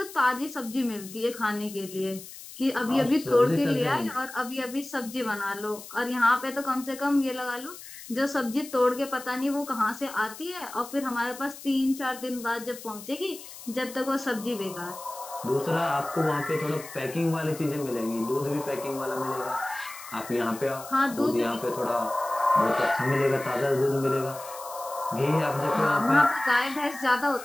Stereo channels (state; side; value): noise; left; hiss, 15 dB below the sound